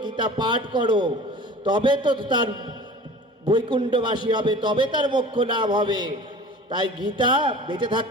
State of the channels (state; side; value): normal; both; correlation 0.41